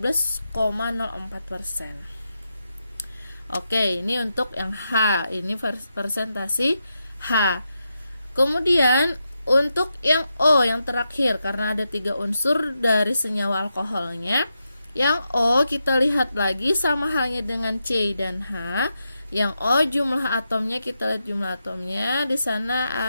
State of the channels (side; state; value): both; inverted; correlation -0.86